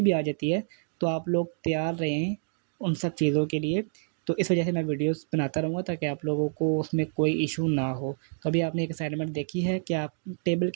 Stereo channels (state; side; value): silent; left; digital silence